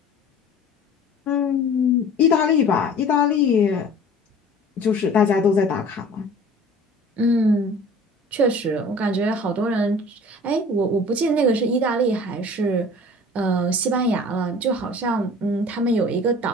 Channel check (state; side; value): normal; both; correlation 0.45